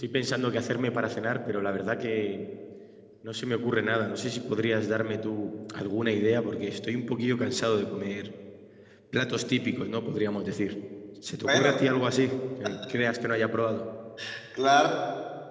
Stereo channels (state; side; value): identical; both; correlation 1.00